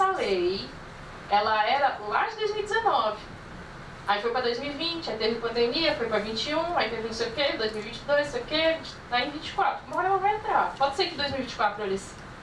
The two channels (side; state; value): both; identical; correlation 1.00